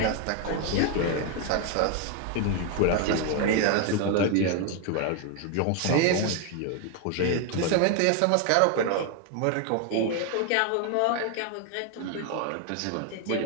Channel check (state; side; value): different; both; correlation 0.01